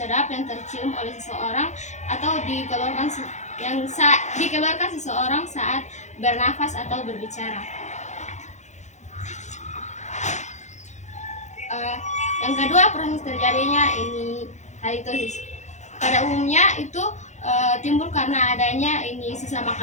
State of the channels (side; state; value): right; late; 0.34 ms